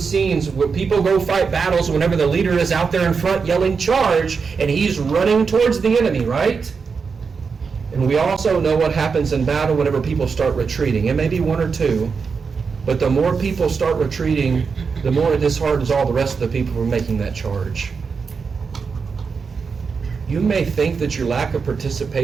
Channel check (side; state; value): left; quieter; 5.4 dB